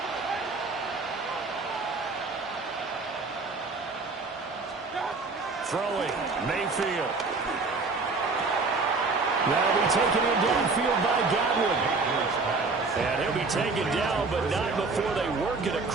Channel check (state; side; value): quieter; left; 4.0 dB